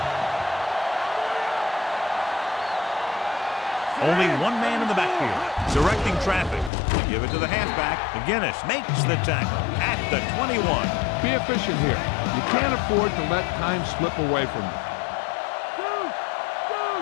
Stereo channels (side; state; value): right; drops out; at 6.7 s